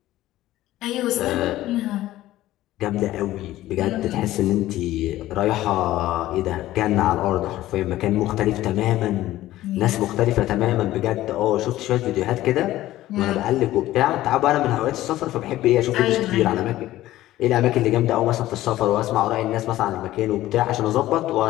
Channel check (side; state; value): right; quieter; 15.2 dB